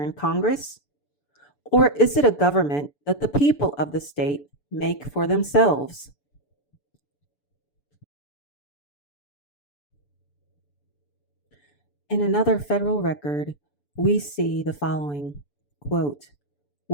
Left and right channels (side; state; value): right; late; 6.9 ms